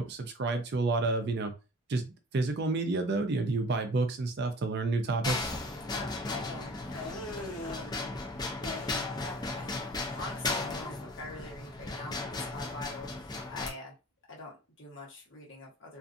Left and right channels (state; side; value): normal; both; correlation 0.45